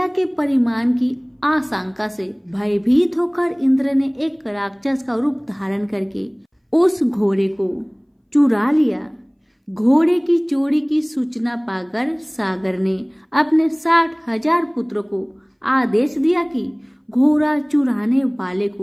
के परिमाण की आशंका से भयभीत होकर इंद्र ने एक राक्षस का रूप धारण करके उस घोड़े को चुरा लिया। घोड़े की चोरी की सूचना पाकर सागर ने अपने 60,000 पुत्रों को आदेश दिया कि घोड़ा चुराने वाले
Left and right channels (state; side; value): identical; both; correlation 1.00